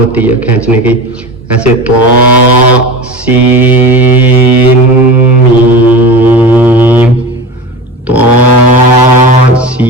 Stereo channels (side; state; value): both; normal; correlation 0.30